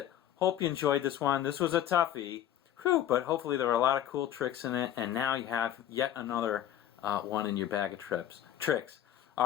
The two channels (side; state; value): right; quieter; 11.3 dB